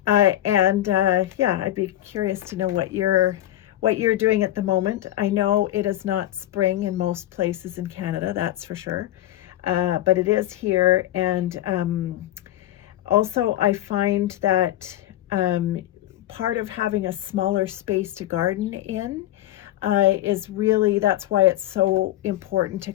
Yeah, I'd be curious to know what you're doing at the moment. I know it is not spring in most places in Canada, that's for sure. But it is here. And also, I find that part of having a smaller space to garden in that's why it's so important to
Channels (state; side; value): quieter; right; 14.2 dB